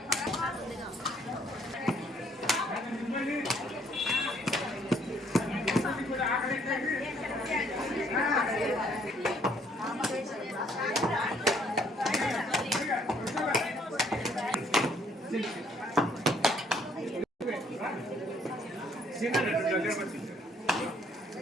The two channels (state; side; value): normal; both; correlation 0.65